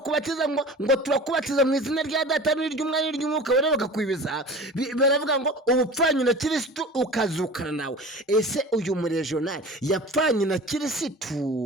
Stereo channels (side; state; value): both; normal; correlation 0.38